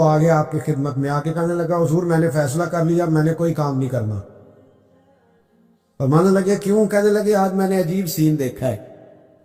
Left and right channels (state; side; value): identical; both; correlation 1.00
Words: آگے آپ کی خدمت میں آ کے کہنے لگا حضور میں نے فیصلہ کر لیا، میں نے کوئی کام نہیں کرنا۔ فرمانے لگے کیوں؟ کہنے لگے آج میں نے عجیب سین دیکھا ہے۔